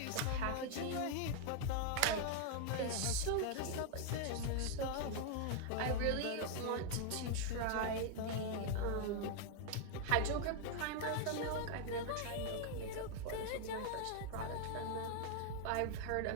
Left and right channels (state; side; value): different; both; correlation 0.00